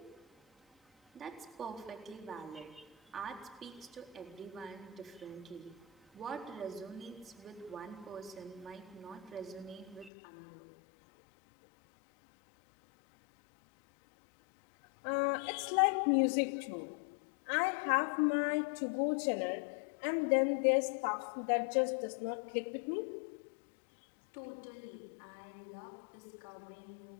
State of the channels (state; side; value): drops out; right; at 10.1 s